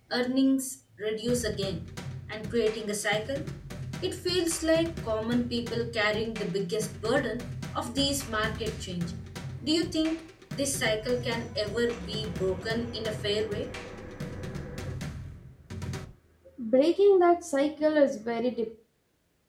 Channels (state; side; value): identical; both; correlation 1.00